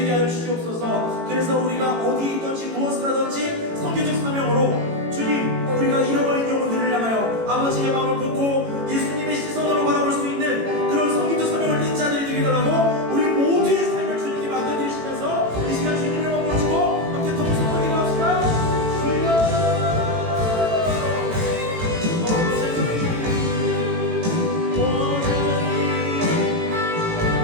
하여 주시옵소서. 그래서 우리가 어디에 있든지 무엇을 하든지 선교적 사명으로 주님, 우리가 잃어버린 영혼들을 향하여 아버지의 마음을 품고 예수님의 시선으로 바라볼 수 있는 그런 선교적 사명을 띈 자들이 되게 달라고 우리 모두의 삶을 주님께 맡겨드리시면서 이 시간 주님을 머무르시고 함께 동성하게 나옵시다.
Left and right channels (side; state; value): left; late; 18 ms